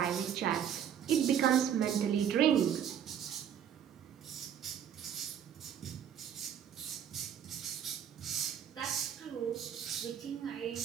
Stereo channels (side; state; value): left; quieter; 9.0 dB